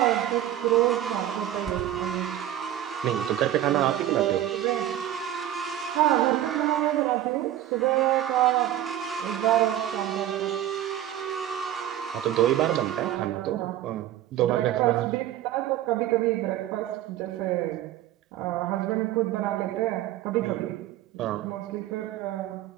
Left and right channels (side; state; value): left; quieter; 12.4 dB